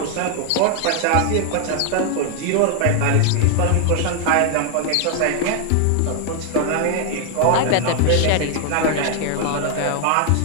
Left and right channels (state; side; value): different; both; correlation 0.00